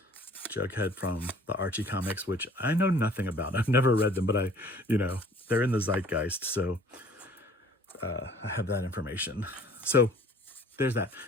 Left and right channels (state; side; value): normal; both; correlation 0.52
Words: Jughead from the Archie comics, which I know nothing about. I've never read them, but they're in the zeitgeist, so I have that information. So there's that.